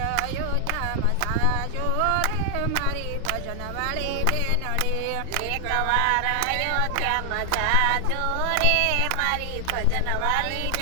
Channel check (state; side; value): different; both; correlation 0.00